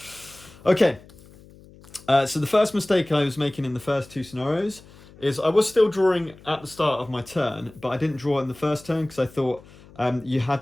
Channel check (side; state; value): left; noise; hum, 23 dB below the sound